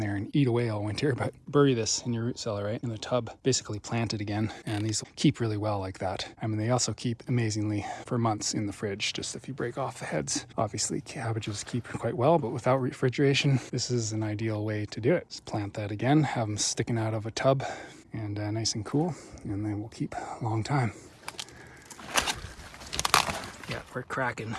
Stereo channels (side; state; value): both; identical; correlation 1.00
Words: and eat away all winter. But bury this in your root cellar, right? In the tub, basically plant it again. And these will keep really well like that. I mean, they also keep amazingly for months in the fridge, just if you break off the heads. Obviously, cabbages keep quite well, but without refrigeration, this is an ideal way to do it. Just plant that again, have them sticking out of a tub and nice and cool, and they will keep a long time. Yeah, we're cracking.